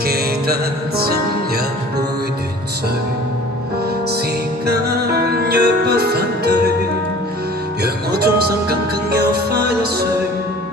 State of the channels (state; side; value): normal; both; correlation 0.46